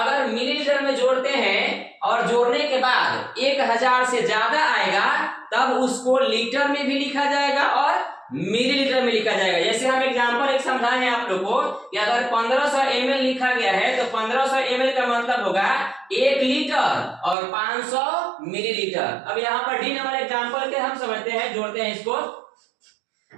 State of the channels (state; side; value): drops out; left; at 17.4 s